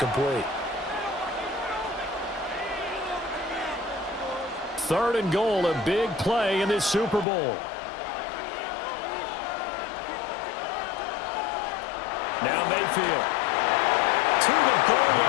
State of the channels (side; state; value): right; drops out; at 7.2 s